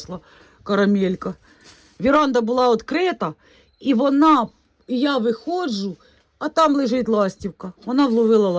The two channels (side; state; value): both; identical; correlation 1.00